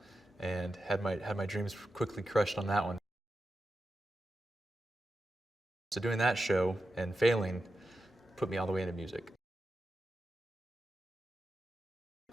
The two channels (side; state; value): both; normal; correlation 0.90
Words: and had my dreams quickly crushed on that one. So doing that show and failing put me all the way into music.